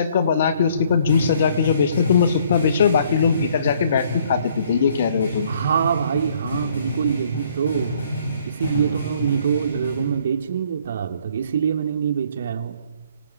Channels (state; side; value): inverted; both; correlation -0.62